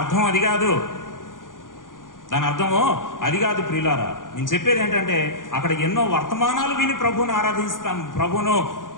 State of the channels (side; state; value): right; late; 0.89 ms